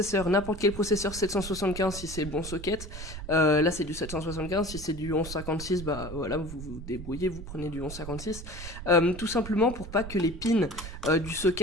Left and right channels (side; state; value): right; noise; rumble, 10 dB below the sound